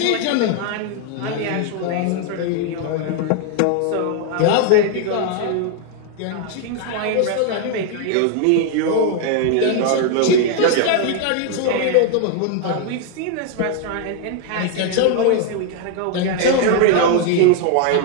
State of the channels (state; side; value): different; both; correlation 0.00